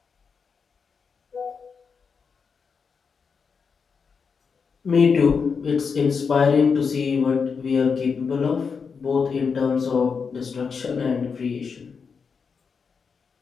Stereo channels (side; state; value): right; quieter; 5.7 dB